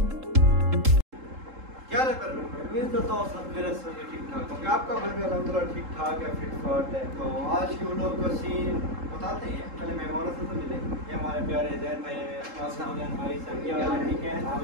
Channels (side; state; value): left; late; 3.7 ms